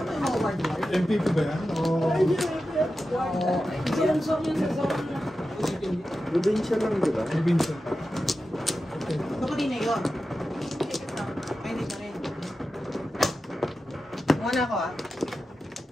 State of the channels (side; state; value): both; normal; correlation 0.92